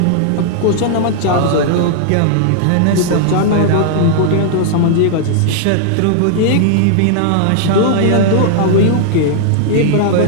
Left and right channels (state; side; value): different; both; correlation -0.01